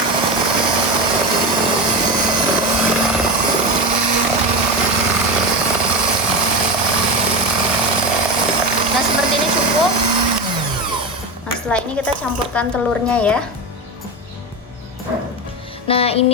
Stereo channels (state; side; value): normal; both; correlation 0.20